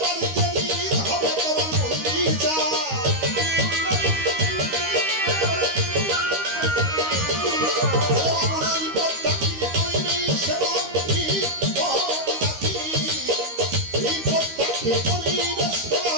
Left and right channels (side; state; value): left; late; 13 ms